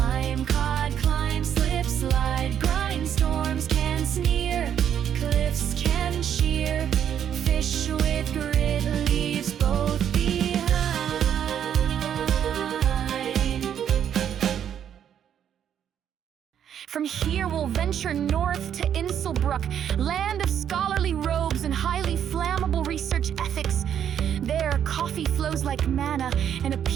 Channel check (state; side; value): quieter; left; 9.2 dB